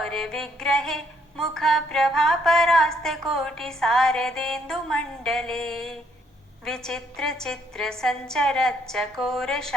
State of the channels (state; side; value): normal; both; correlation 0.69